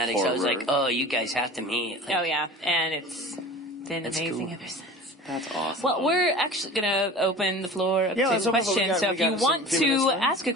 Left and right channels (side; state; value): both; normal; correlation 0.38